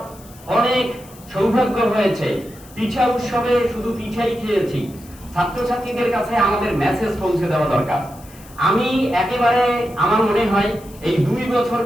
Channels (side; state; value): left; noise; hiss, 23 dB below the sound